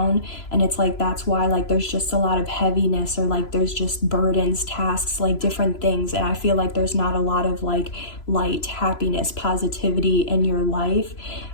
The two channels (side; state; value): right; late; 3.0 ms